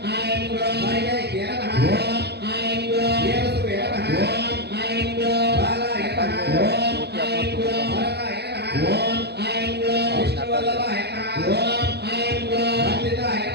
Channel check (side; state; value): left; late; 0.48 ms